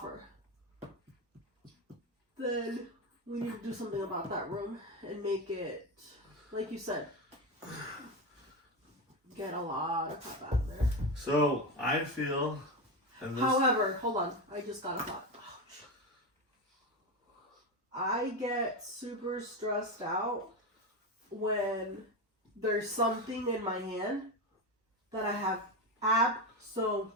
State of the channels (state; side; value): normal; both; correlation 0.16